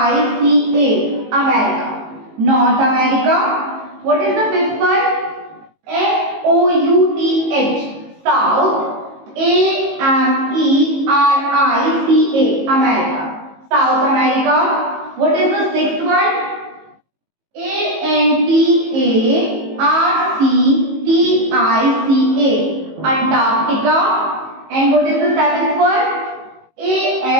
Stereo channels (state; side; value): late; left; 18 ms